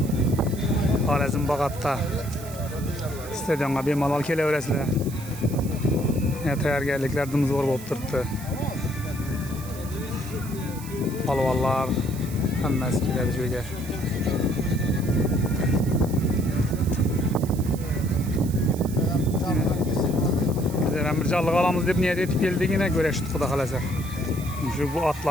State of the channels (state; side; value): noise; right; hiss, 16 dB below the sound